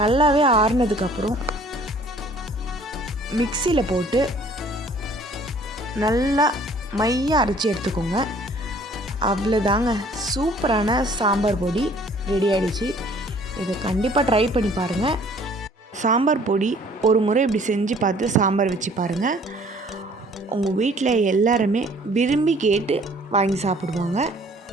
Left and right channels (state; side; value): normal; both; correlation 0.55